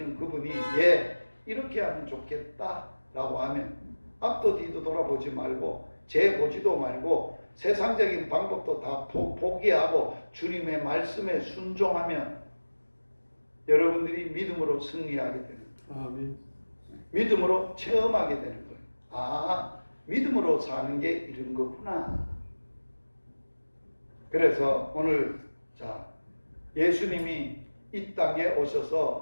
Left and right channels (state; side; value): inverted; both; correlation -1.00